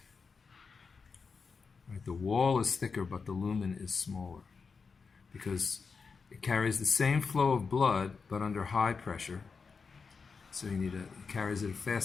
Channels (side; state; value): right; quieter; 5.1 dB